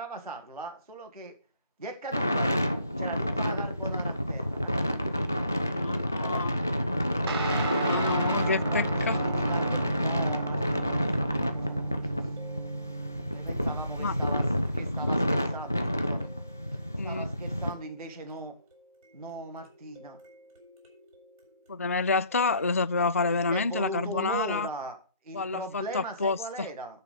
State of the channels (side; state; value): both; inverted; correlation -0.67